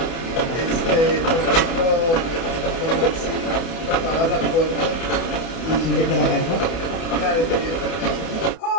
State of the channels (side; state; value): right; late; 30 ms